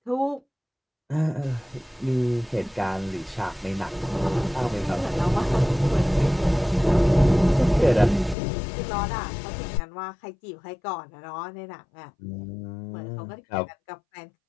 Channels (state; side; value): drops out; right; at 8.3 s